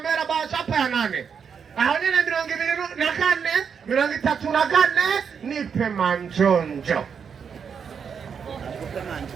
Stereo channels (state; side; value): quieter; left; 6.7 dB